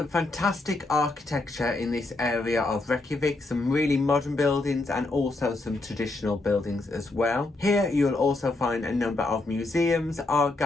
fantastic architecture in this area of Reykjavik, some really modern buildings and also some traditional buildings as well. Here you'll also find a number of museums, art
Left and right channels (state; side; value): quieter; right; 3.0 dB